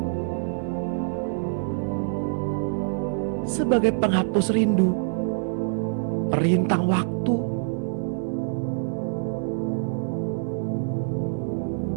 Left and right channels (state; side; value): silent; left; 55 dB below the other